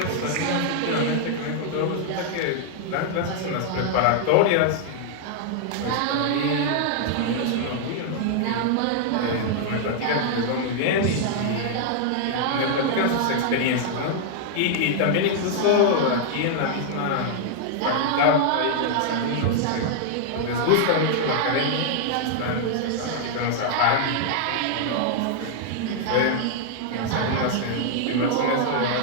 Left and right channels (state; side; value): different; both; correlation -0.01